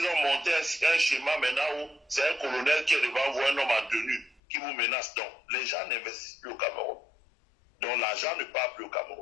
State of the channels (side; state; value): right; drops out; at 4.4 s